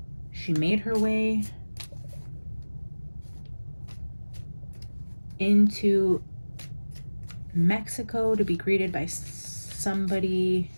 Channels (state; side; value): inverted; both; correlation -1.00